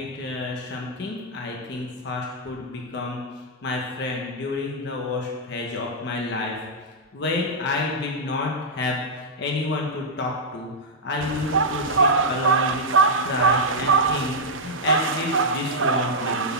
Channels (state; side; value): normal; both; correlation -0.05